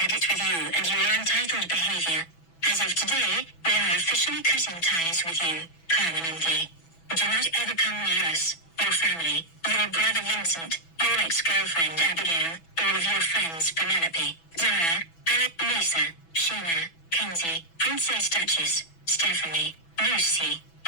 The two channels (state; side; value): late; right; 6.1 ms